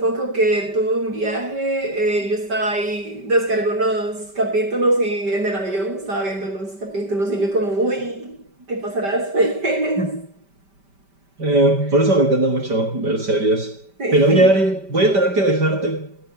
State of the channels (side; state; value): left; late; 5.1 ms